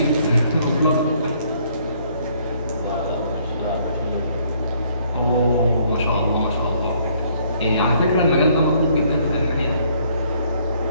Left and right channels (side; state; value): both; inverted; correlation -0.65